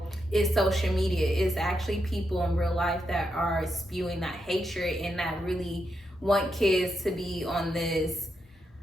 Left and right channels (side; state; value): both; normal; correlation 0.84